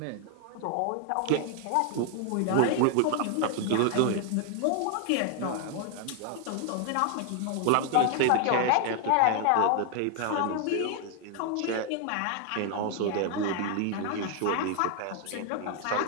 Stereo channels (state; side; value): different; both; correlation 0.00